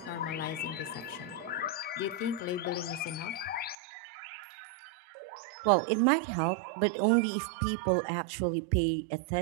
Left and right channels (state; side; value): drops out; left; at 3.8 s